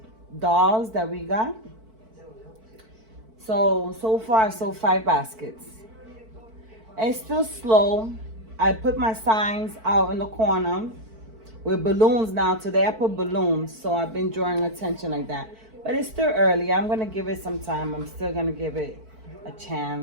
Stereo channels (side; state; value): left; late; 4.5 ms